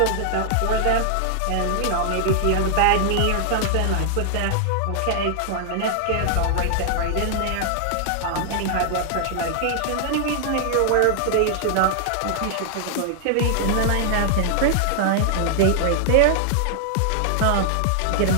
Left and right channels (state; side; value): different; both; correlation -0.01